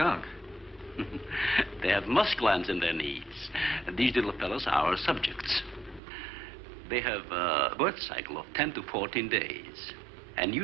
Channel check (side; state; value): left; drops out; at 6.0 s